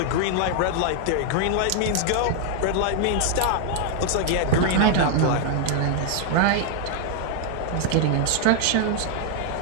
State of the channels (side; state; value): both; different; correlation 0.00